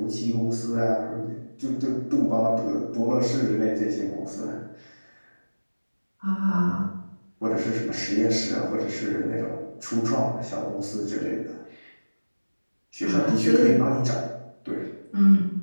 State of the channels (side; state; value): both; inverted; correlation -1.00